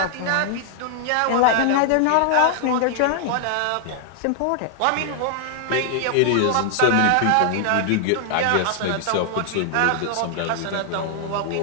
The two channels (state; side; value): different; both; correlation 0.00